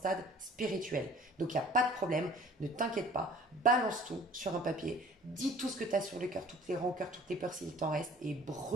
spirituel. Donc, il n'y a pas de problème, ne t'inquiète pas, balance tout sur un papier, dis tout ce que tu as sur le cœur, toutes les rancœurs, toutes les peurs s'il t'en reste, et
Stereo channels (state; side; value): normal; both; correlation 0.49